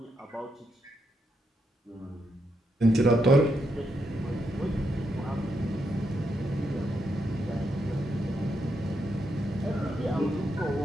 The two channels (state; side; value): normal; both; correlation 0.81